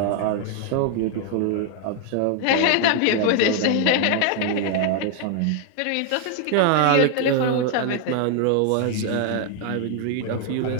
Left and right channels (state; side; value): different; both; correlation 0.01